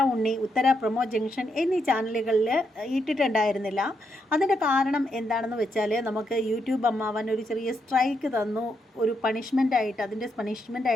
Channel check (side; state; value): both; normal; correlation 0.80